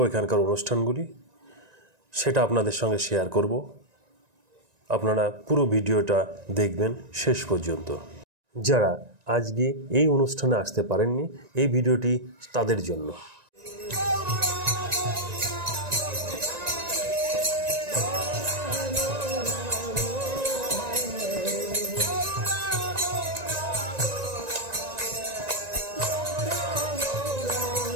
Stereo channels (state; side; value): late; left; 1.9 ms